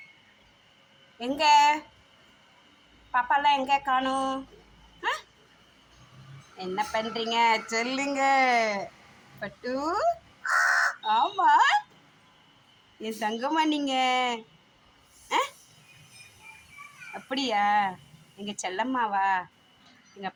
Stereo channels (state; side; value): identical; both; correlation 1.00